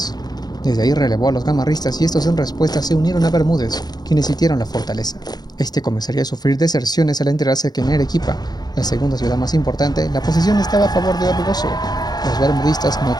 Desde ahí relevó a los gamarristas y estos en respuesta se unieron a Bermúdez, quienes sitiaron la fortaleza. Este comenzaría a sufrir deserciones al enterarse que en Arequipa, la segunda ciudad más importante, la posición estaba a favor de Orbegoso. Los bermudistas no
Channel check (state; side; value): late; right; 0.19 ms